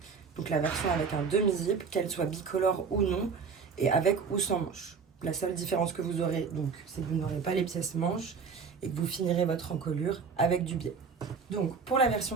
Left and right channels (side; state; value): left; quieter; 5.6 dB